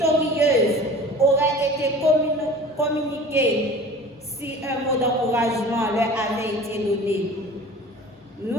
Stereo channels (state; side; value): normal; both; correlation 0.41